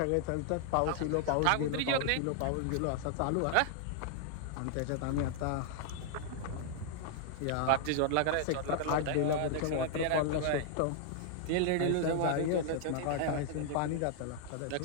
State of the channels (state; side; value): different; both; correlation -0.01